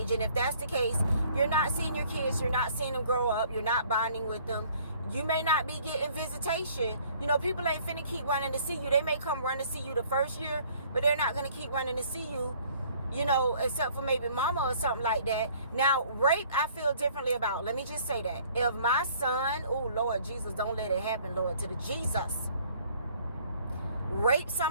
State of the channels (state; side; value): inverted; both; correlation -0.57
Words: And if that's the case, you're not seeing your kids. You're not seeing them grow up. You're not bonding with them. You may not be getting visitation. You know, people ain't finna keep running to see you. They may come run to see you the first year, but they're not going to keep running to see you, you know, except for maybe mama or something like that. Now, rape, I feel differently about. Let me just say that. If my son, oh, Lord Jesus, don't let it happen, Lord, to the Jesus, rape